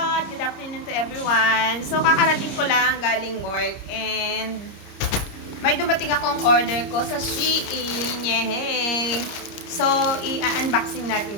Good afternoon to everyone. So kakarating ko lang galing work and may dumating akong order ko sa Shein. Yehey! So i-unboxing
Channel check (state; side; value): late; right; 30 ms